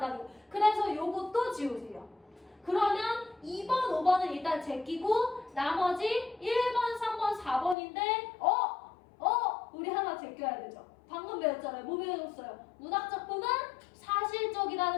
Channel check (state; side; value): drops out; right; at 7.8 s